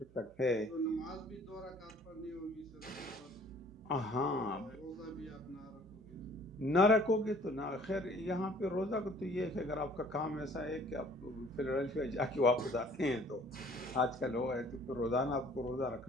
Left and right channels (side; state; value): right; noise; hum, 24 dB below the sound